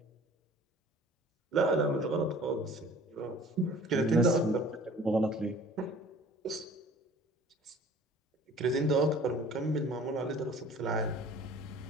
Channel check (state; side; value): normal; both; correlation 0.48